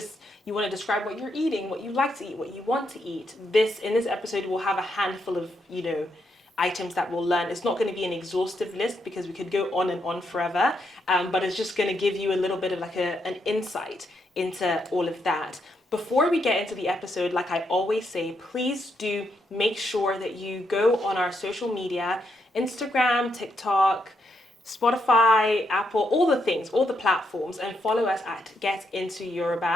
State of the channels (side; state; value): both; normal; correlation 0.79